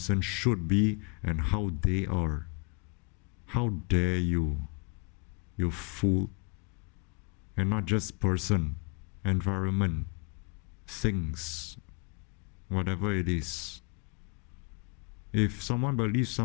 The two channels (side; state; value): right; quieter; 34.7 dB